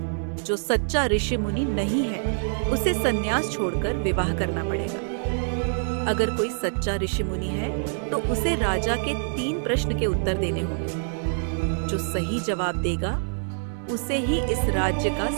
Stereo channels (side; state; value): left; silent; digital silence